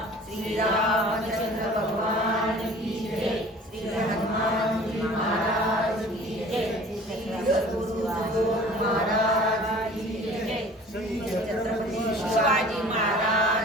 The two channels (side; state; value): both; normal; correlation 0.46